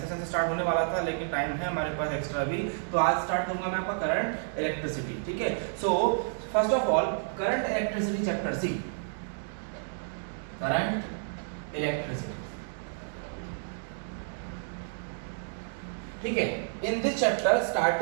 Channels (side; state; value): left; silent; digital silence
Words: सेशन से स्टार्ट होने वाला था लेकिन टाइम है हमारे पास एक्स्ट्रा भी, तो आज स्टार्ट करूंगा मैं आपका करंट इलेक्ट्रिसिटी, ठीक है। So first of all current electricity chapter C, current electricity, ठीक है। इन दिस चैप्टर